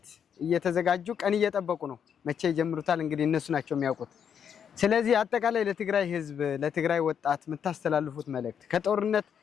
እየተዘጋጁ ቀን እየጠበቁ ነው። መቼ ይጀምሩታል እንግዲህ እነሱ ናቸው የሚያውቁት። ስለዚህ አጠቃላይ ለትግራይ ህዝብ፣ ለትግራይ ወጣት የምታስተላልፉት መልእክት ከጦርነት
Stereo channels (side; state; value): right; quieter; 7.9 dB